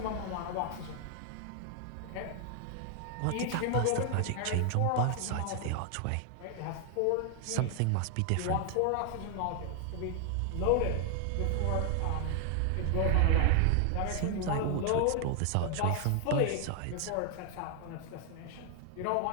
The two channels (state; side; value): different; both; correlation 0.00